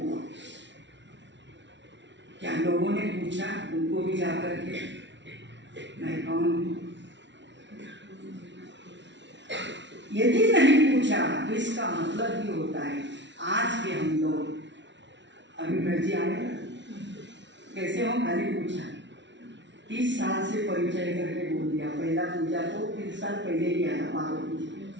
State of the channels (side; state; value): left; late; 0.52 ms